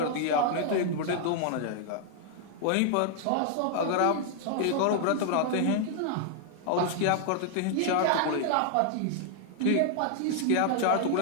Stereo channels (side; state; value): both; different; correlation 0.00